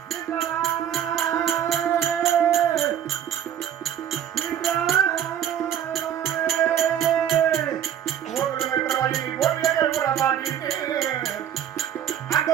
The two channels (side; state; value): left; quieter; 9.8 dB